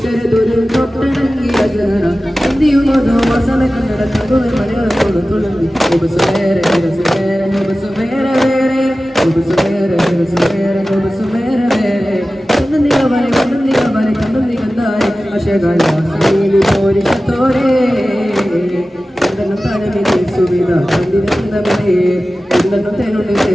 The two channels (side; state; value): both; normal; correlation 0.96